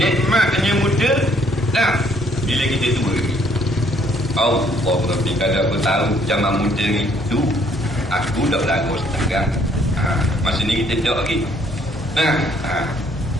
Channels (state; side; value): normal; both; correlation 0.65